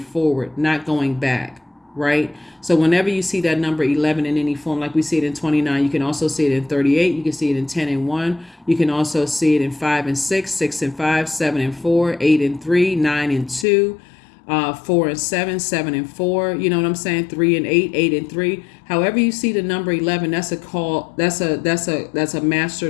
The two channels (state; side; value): drops out; right; at 13.7 s